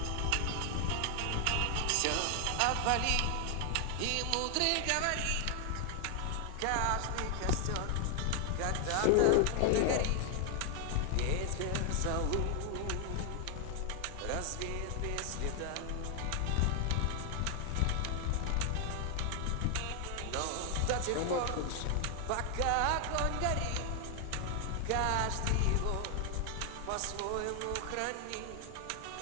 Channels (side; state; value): both; different; correlation 0.00